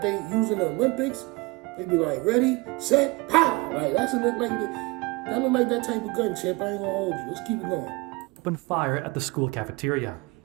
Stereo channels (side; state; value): left; quieter; 24.6 dB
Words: they use in the Olympics. They be like, ready, set, pow! Like, that look like that type of gun, champ. I ain't gonna hold you. Let's keep it going. Opened fire at the school cafeteria.